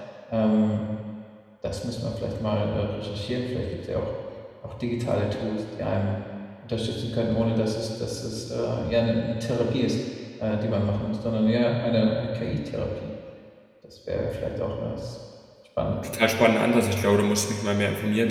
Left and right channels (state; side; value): identical; both; correlation 1.00